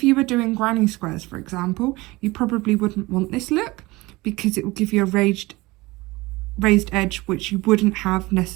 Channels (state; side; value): quieter; left; 21.4 dB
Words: you were doing granny squares, for example, you probably wouldn't want this look because it will give you a raised edge, which you wouldn't have